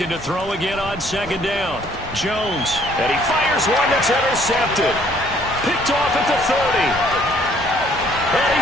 to throw again on second down. Jones. And he fires one that's intercepted. Picked off at the 30. And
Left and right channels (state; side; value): normal; both; correlation 0.62